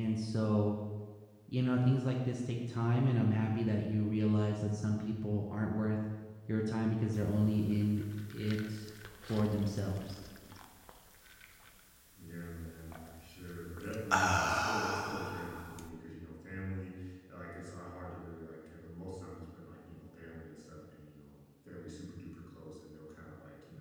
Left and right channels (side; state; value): both; identical; correlation 1.00